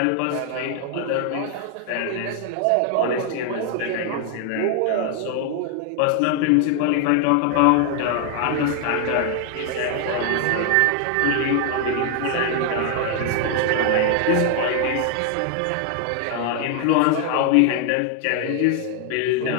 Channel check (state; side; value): different; both; correlation 0.00